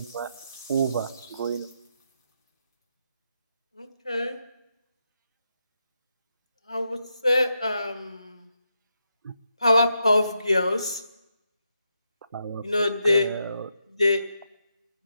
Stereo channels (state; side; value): inverted; both; correlation -0.83